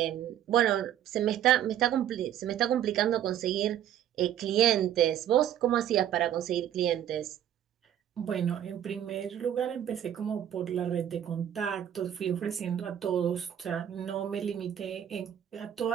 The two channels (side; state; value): left; quieter; 10.6 dB